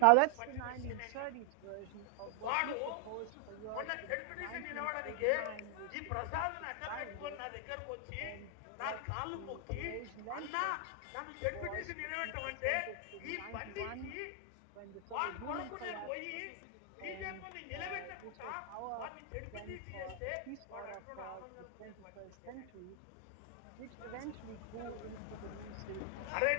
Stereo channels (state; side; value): different; both; correlation 0.00